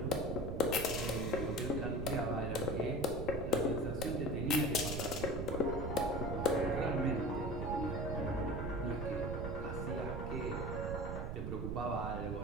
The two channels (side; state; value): right; noise; rumble, 3 dB below the sound